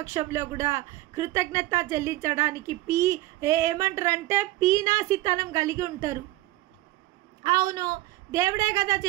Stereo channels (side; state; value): left; quieter; 17.2 dB